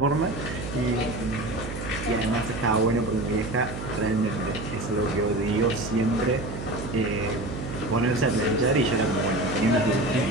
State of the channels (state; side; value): noise; right; hum, 8 dB below the sound